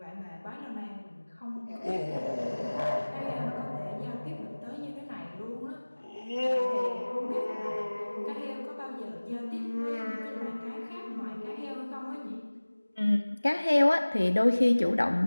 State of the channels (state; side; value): inverted; both; correlation -1.00